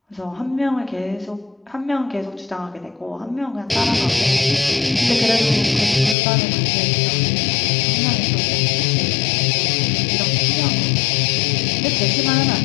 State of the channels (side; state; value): right; drops out; at 6.2 s